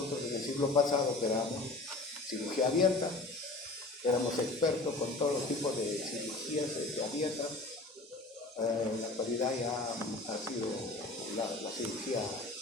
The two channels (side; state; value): right; quieter; 3.1 dB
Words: en el siglo pasado que éramos cirugía abierta, éramos expertos con todos los tipos de cirugías abiertas. En la actualidad ya ha sido la cirugía